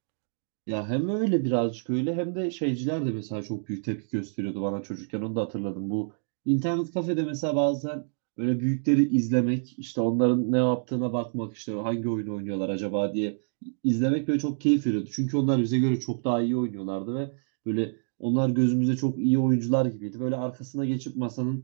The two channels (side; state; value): left; silent; digital silence